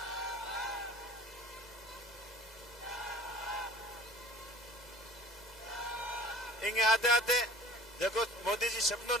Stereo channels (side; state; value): both; normal; correlation 0.46